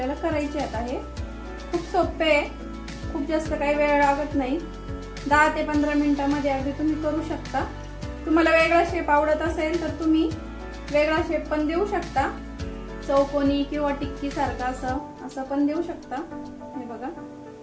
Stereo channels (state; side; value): identical; both; correlation 1.00